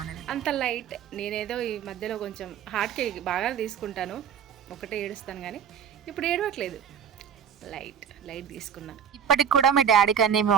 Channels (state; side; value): quieter; left; 8.0 dB